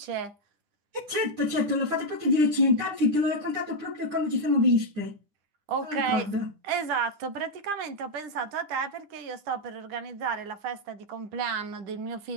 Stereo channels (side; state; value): left; late; 9.9 ms